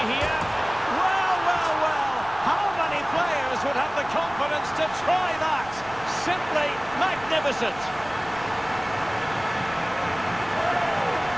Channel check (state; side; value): noise; right; rumble, 20 dB below the sound